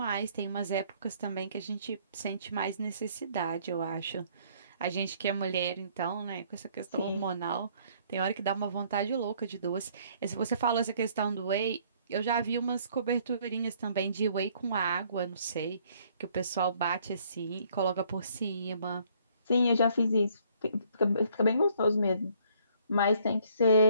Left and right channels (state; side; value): inverted; both; correlation -0.63